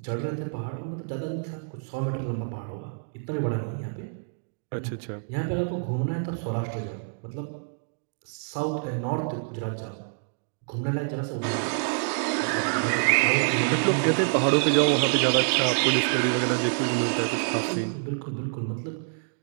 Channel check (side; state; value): left; silent; digital silence